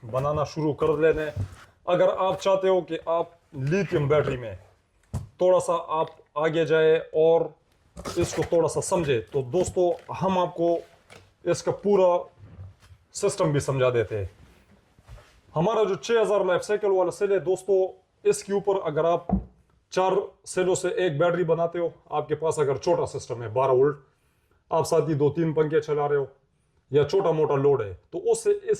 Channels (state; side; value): identical; both; correlation 1.00